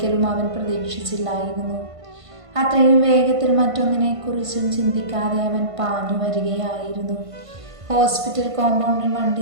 അവൻ പ്രതീക്ഷിച്ചില്ലായിരുന്നു. അത്രയും വേഗത്തിൽ മറ്റൊന്നിനെക്കുറിച്ചും ചിന്തിക്കാതെ അവൻ പാഞ്ഞു വരികയായിരുന്നു. ഹോസ്പിറ്റൽ കോമ്പൗണ്ടിൽ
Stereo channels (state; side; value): late; left; 1.5 ms